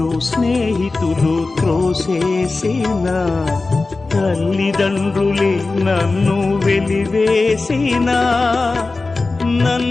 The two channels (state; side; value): quieter; right; 3.6 dB